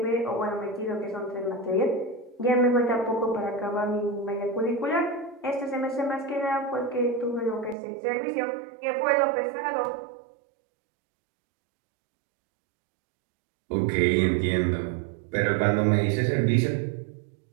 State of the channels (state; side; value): drops out; left; at 7.8 s